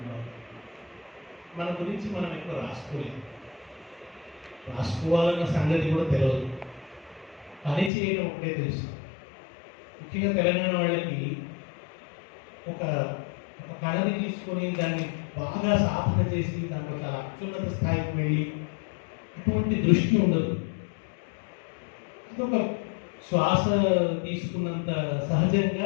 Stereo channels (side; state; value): right; drops out; at 7.9 s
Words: మన గురించి మనం ఎక్కువ రాసుకోలేదు, రాసుకోవాలన్న సంగతి కూడా తెలియదు, పని చేయడం ఒకటే తెలుసు. ముఖ్యంగా తెలంగాణ వాళ్ళకి ఒక కళని తీసుకొని దాన్ని బాగా సాధన చేసి దాంట్లో చాలా అత్యున్నత స్థాయికి వెళ్ళి అటువంటి దృష్టి ఉండదు. అదొక శ్వాస తీసుకున్నంత